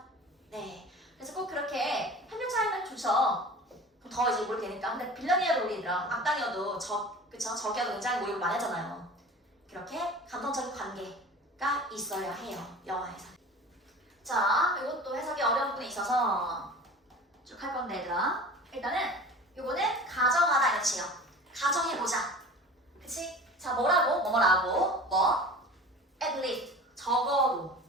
네. 그래서 꼭 그렇게 협력자이면 좋죠. 그럼 더 이제 모르게 되니까. 근데 빌런이어도 우리 얘들아, 악당이어도 적이어도 굉장히 모욕을 많이 하잖아요. 그렇게 감정적인 관계가 있어야 해요. 영화에서. 자, 이것도 해석이 어려운 부분이 있어서 쭉 할 건데 얘들아. 일단은 요거는 가정하다 이런 뜻이에요. 가정해보자. 그치? 자, 뭐라고? at least. 적어도.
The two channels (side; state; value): both; normal; correlation 0.38